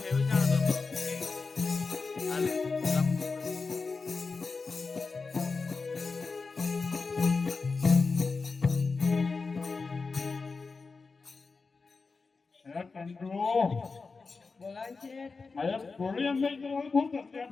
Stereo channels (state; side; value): quieter; right; 4.4 dB